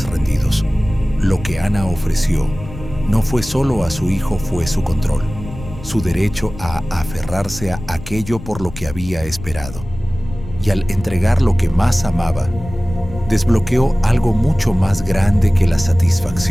rendidos. Lo que Ana ofreció no fue solo a su hijo, fue su control, su derecho a aferrarse a aquello por lo que había esperado. Y al entregar lo que más amaba, desbloqueó algo mucho más grande que la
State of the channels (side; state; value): left; noise; rumble, 13 dB below the sound